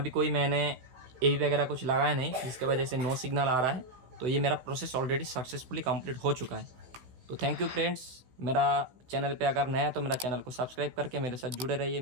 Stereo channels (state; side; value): late; left; 16 ms